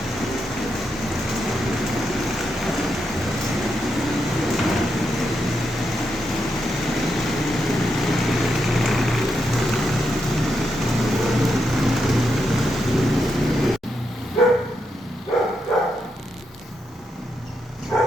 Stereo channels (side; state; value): both; normal; correlation 0.83